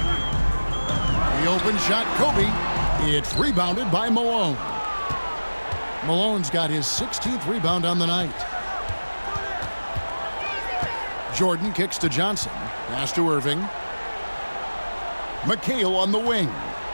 The open shot, Kobe. It's rebounded by Malone. Malone's got his 16th rebound on the night. Jordan kicks to Johnson. Pass to Irving. McHale on the wing.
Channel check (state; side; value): inverted; both; correlation -1.00